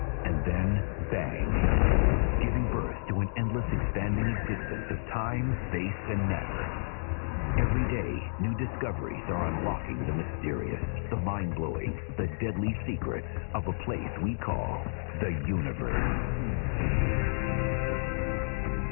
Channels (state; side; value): silent; right; digital silence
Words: and then bang, giving birth to an endless expanding existence of time, space, and matter. Every day, new discoveries are unlocking the mysterious, the mind-blowing, the deadly secrets of a place we call the universe.